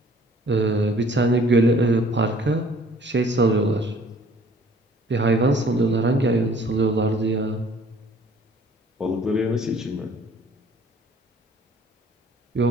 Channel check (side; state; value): both; normal; correlation 0.55